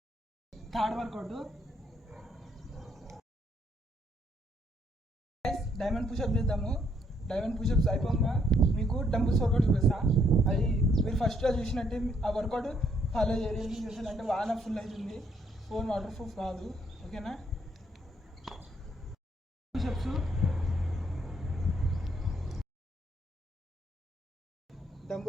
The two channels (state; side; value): normal; both; correlation 0.70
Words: Third workout diamond pushup చేద్దాము. డైమండ్ పుషప్స్ అయిపోగా మీకు డంబుల్స్ వర్కౌట్ చూపిస్తా. అది మీరు ఫస్ట్లో చూసినట్టే ఆ వర్కౌట్ ఫాలో చేయాలి. చేసానంటే వాన ఫుల్ అవుతుంది. ఫోన్ వాటర్ ప్రూఫ్ కాదు. ఓకేనా? పుషప్స్